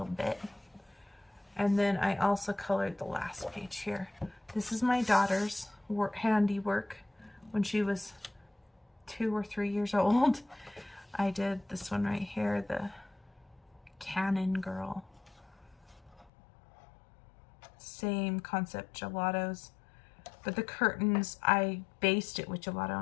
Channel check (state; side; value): drops out; right; at 16.3 s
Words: bit. And then I also colored the last page here. This is my daughter's handiwork when she was 2 or 3 years old. I did this one right here, the Cannon Girl. Same concept, gelatos. But the curtains, I based it with